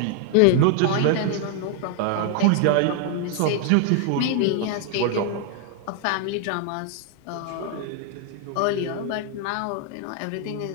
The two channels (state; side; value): different; both; correlation 0.00